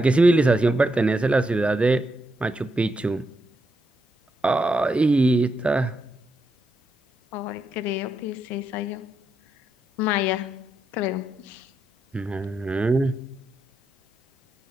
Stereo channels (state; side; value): normal; both; correlation 0.83